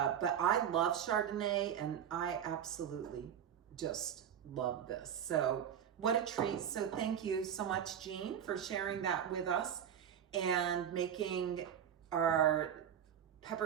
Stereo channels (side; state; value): left; quieter; 9.1 dB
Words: I love Chardonnay and I absolutely just love this. So what a treat. So thank you so much, Jean, for sharing that with us and making our